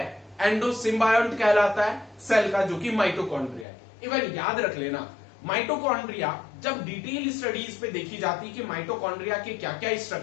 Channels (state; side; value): drops out; right; at 3.7 s